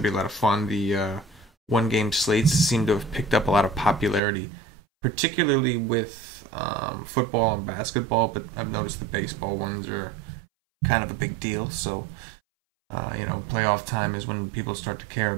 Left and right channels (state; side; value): drops out; left; at 4.2 s